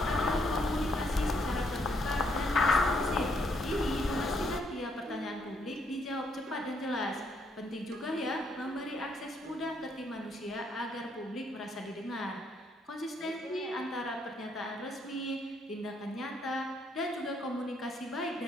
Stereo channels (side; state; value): both; normal; correlation 0.72